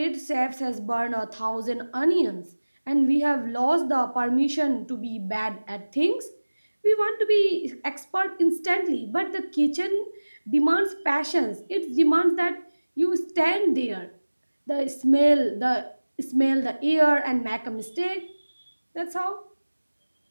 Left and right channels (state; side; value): inverted; both; correlation -1.00